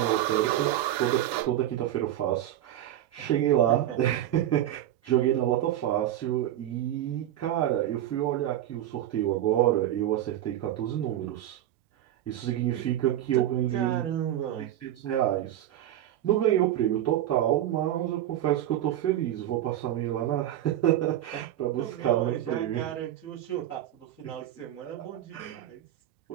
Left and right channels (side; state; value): left; quieter; 12.4 dB